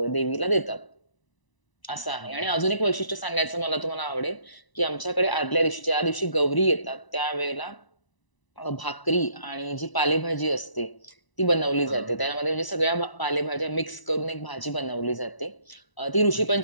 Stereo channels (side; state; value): right; late; 1.0 ms